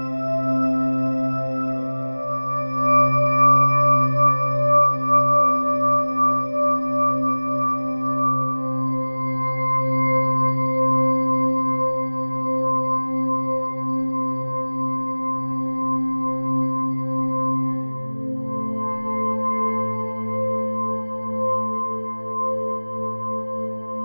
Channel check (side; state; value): both; inverted; correlation -1.00